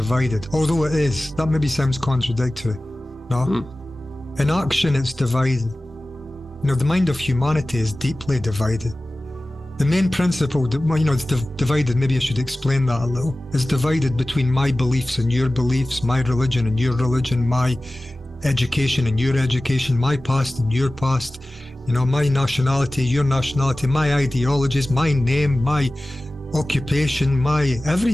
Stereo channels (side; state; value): both; normal; correlation 0.97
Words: although it is. That maybe sounds contradictory. No? In action, it's divided. The mind of humanity is deeply divided. The main principle, it's divided, maybe I should explain that a little. It's divided between my beliefs and your beliefs, my religion and your religion, my education and your education, my past and your past, my nationality, your nationality, my ideologies, my name, my occupation, my